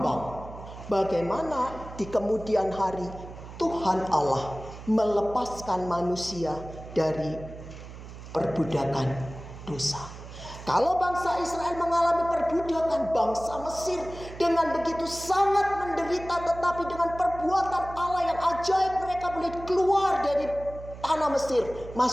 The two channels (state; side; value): noise; right; hum, 14 dB below the sound